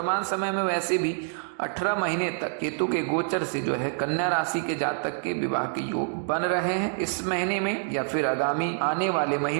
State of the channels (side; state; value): left; silent; 60 dB below the other